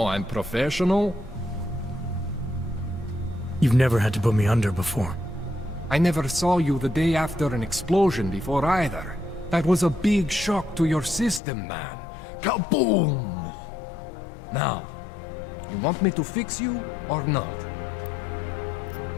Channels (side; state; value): right; drops out; at 11.4 s